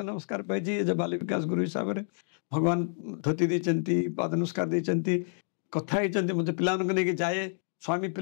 नमस्कार पाई एज बाल विकास गुरु हिसाब से भगवान धोती देती पाद नमस्कार देती कथा होती मुझे पिला नहीं जाए स्वामी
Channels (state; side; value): silent; right; 59 dB below the other